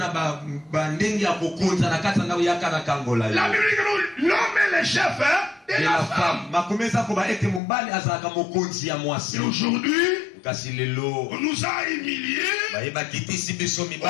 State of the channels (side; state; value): right; drops out; at 7.6 s